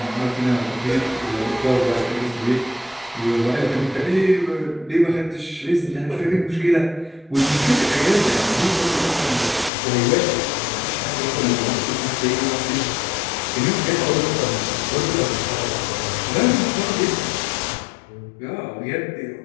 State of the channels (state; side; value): drops out; right; at 9.7 s